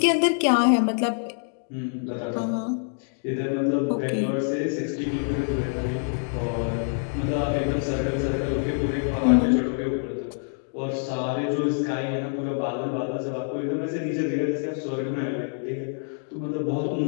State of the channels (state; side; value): silent; right; 61 dB below the other